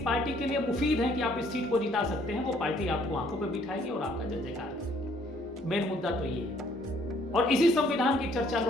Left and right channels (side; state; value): both; normal; correlation 0.63